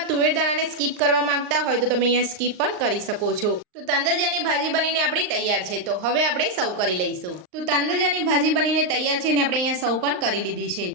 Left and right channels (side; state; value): left; late; 38 ms